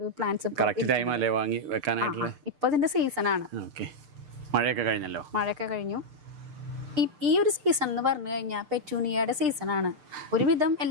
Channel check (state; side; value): late; left; 6.6 ms